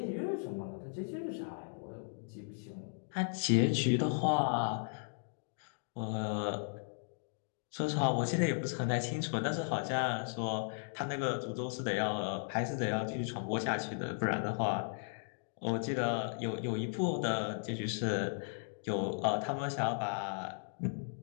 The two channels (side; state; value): right; silent; digital silence